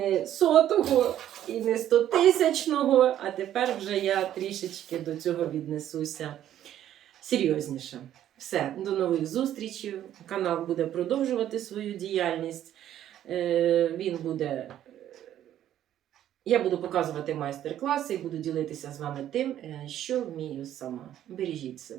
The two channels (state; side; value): quieter; left; 11.5 dB